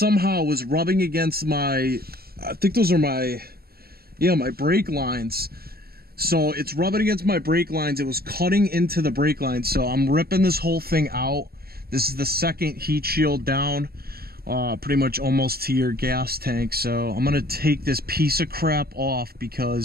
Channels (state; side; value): late; left; 0.45 ms